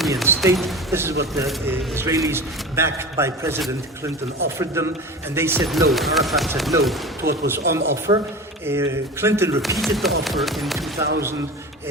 state. This is what the Israelis, backed by President Clinton, offered them, and they said no. Arafat said no to what was on offer. Clinton repeated the offer in 2000,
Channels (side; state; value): both; normal; correlation 0.32